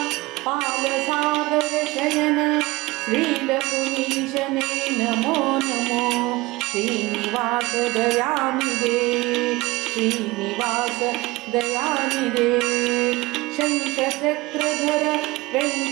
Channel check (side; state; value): left; quieter; 21.0 dB